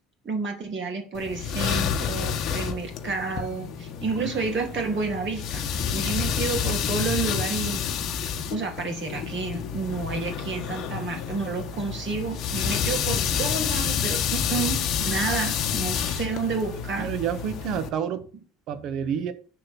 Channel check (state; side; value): normal; both; correlation 0.39